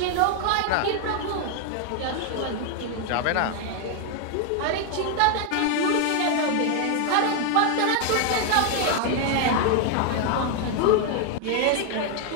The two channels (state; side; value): different; both; correlation 0.00